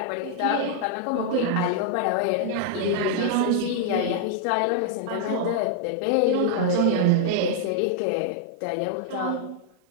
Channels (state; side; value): different; both; correlation -0.01